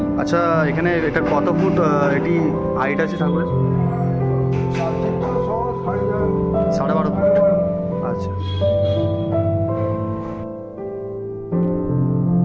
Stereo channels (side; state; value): both; identical; correlation 1.00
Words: আচ্ছা, এখানে এটা কত ফুট এটি হাইট আছে ঠাকুরের? 12.5 ফুট। আচ্ছা,